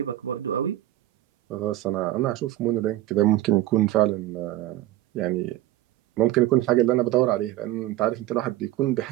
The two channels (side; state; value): left; quieter; 14.9 dB